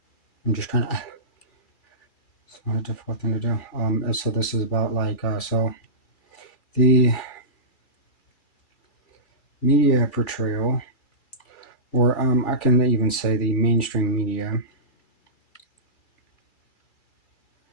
I'm just trying to. It's not a difficult thing to do. So this is about so the media portrayal, or I can even say the mainstream media,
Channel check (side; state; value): right; late; 2.3 ms